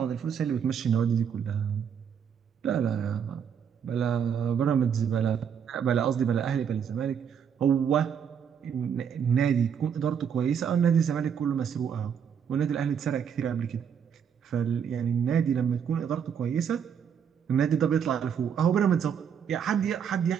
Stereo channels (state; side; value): quieter; left; 7.7 dB